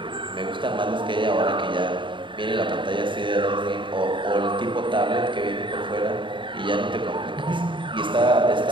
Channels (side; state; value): left; late; 0.24 ms